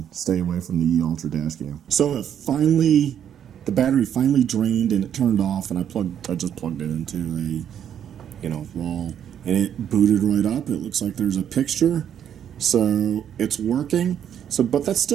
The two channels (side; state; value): left; quieter; 9.3 dB